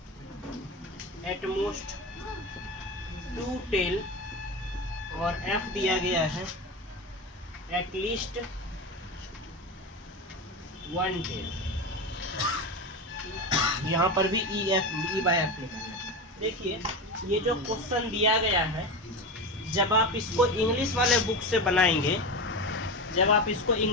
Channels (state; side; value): normal; both; correlation 0.22